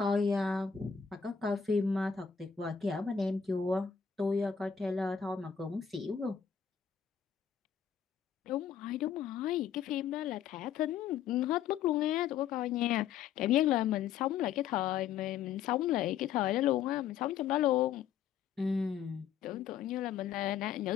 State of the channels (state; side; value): quieter; right; 7.9 dB